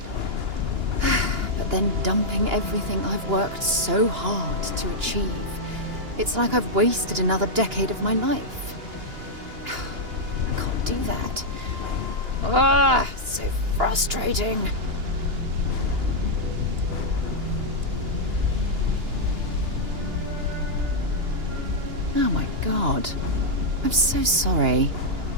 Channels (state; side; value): late; left; 2.9 ms